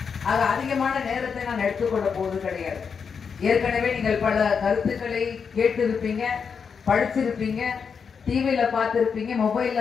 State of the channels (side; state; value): right; quieter; 6.1 dB